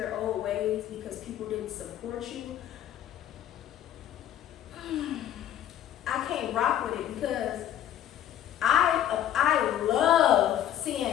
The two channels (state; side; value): quieter; right; 11.2 dB